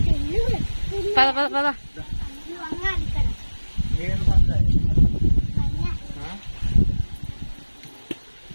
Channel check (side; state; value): both; inverted; correlation -1.00